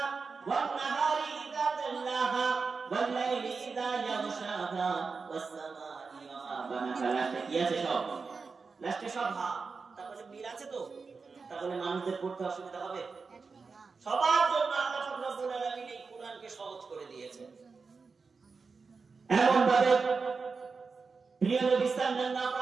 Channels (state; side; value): quieter; left; 4.7 dB